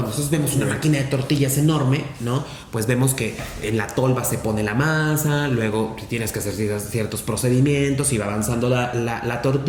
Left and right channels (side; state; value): both; identical; correlation 1.00